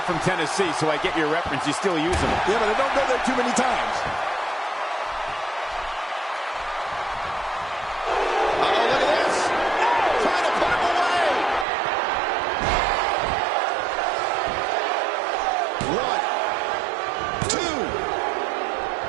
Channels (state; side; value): drops out; left; at 11.7 s